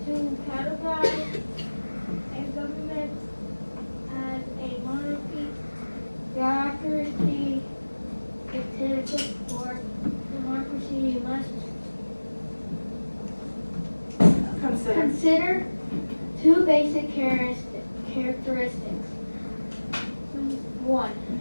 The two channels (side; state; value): both; inverted; correlation -1.00